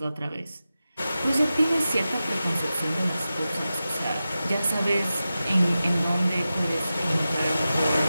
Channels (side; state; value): both; inverted; correlation -0.93